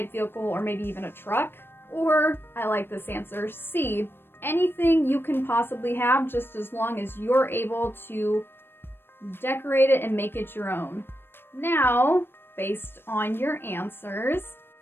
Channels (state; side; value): late; right; 0.10 ms